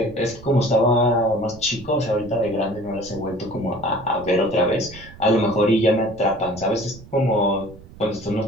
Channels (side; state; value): right; noise; rumble, 19 dB below the sound